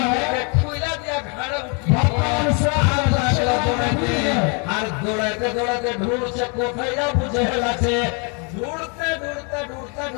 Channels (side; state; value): right; quieter; 35.4 dB